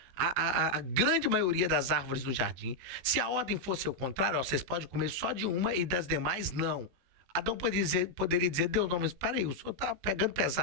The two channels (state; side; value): late; left; 16 ms